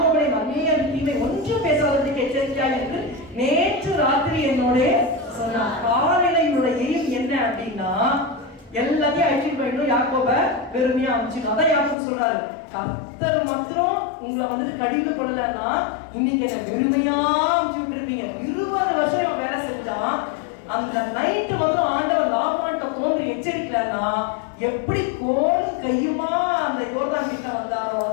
நன்மையை தீமை ஒன்று பேசாததுக்கு எச்சரிக்கையா இருக்கு. நேற்று ராத்திரி என்னோட சொன்ன காலையினுடைய எய்ம் என்ன அப்படின்னா, எல்லாத்தையும் அழிச்சிட்டு போயிடும், யாக்கோப வெறுமையா அனுப்பிச்சிடும். அதான் யாக்கோபு சொல்றாரு, கர்த்தர் மாத்திரம் உங்களை வந்துட்டு கடிந்து கொள்ளலன்னா இன்னைக்கு என்ன வெறுமையா அனுப்பிச்சு விட்டுருப்பீங்க. 20 வருஷம் இவன் வேலை செஞ்சான். அந்த நைட்டு வந்து ஆண்டவர் லாபான்கிட்ட தோன்றி எச்சரிக்கலன்னா எப்படி கோலும் கையுமா அந்த யோர்தான் கிட்ட வந்தாரோ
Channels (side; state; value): right; drops out; at 12.0 s